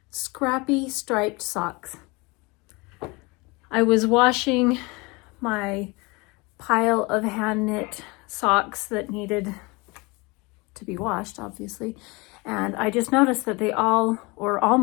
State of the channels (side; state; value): right; quieter; 26.2 dB